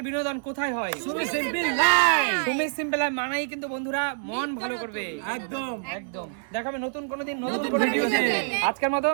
বিনোদন কোথায় হয়? Sumi simple life. Sumi simple মানাই কিন্তু বন্ধুরা মন ভালো করবে। একদম একদম দেখাবে নতুন কোনো দিন নতুন নতুন কোনো ভিডিওতে। ভিডিওতে। আজকের মতো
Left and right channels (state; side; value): silent; left; digital silence